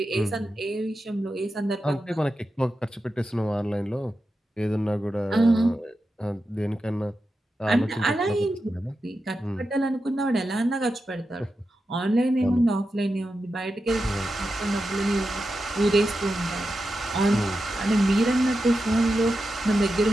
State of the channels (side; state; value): both; normal; correlation 0.90